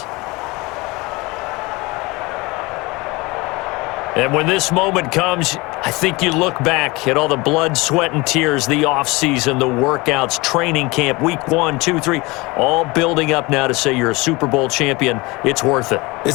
And when this moment comes, I think you look back at all the blood, sweat, and tears, the offseason, the workouts, training camp, week 1, 2, 3, all building up now to say you're a Super Bowl champion. It's worth it.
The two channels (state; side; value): quieter; right; 23.9 dB